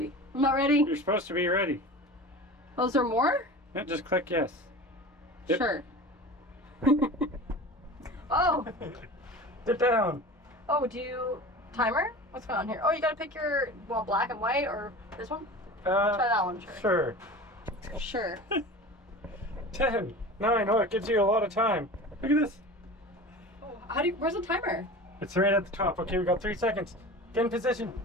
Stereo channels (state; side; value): normal; both; correlation 0.35